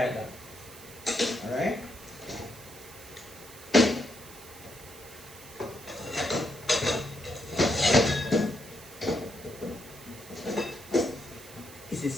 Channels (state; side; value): noise; right; hiss, 17 dB below the sound